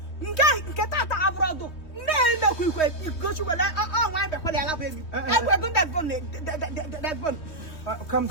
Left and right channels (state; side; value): late; right; 3.2 ms